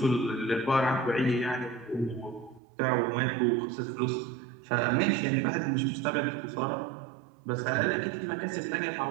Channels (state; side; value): drops out; left; at 2.6 s